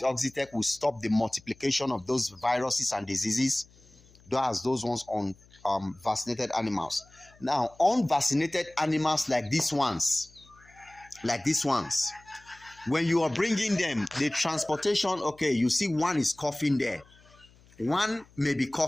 will stop the multiplication of those viruses and diseases. Those ones on vaccinated animals. Now, unvaccinated animals like these ones, when you are bringing them, the transportation, okay, you see one is coughing there. One may be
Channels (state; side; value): noise; left; hum, 27 dB below the sound